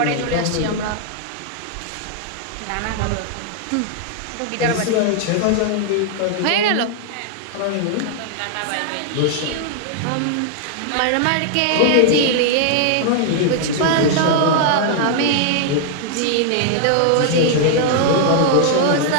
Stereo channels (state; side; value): different; both; correlation -0.01